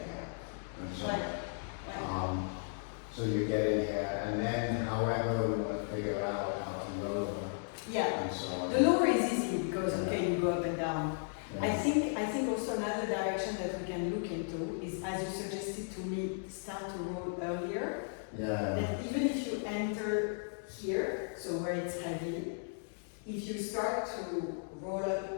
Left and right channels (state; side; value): silent; right; digital silence